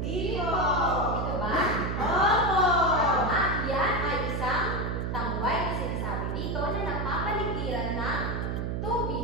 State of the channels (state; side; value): noise; right; hum, 1 dB below the sound